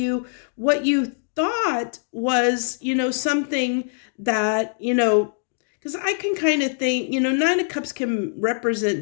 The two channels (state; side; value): silent; right; digital silence